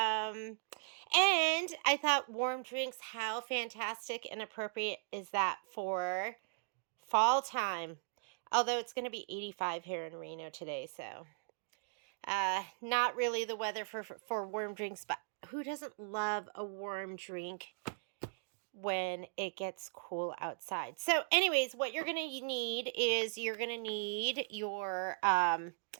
And I thought warm drinks, how fantastic and appropriate is that for fall time? Although it's going to be 85 here in Reno today, so not really the weather for warm drinks, but who doesn't love a warm drink when it gets cool outside? So anyways, what you're going to need is you're going to need your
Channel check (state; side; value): silent; left; digital silence